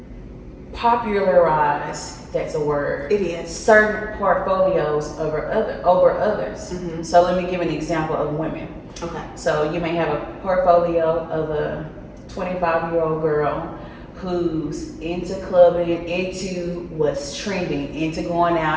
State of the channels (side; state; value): both; identical; correlation 1.00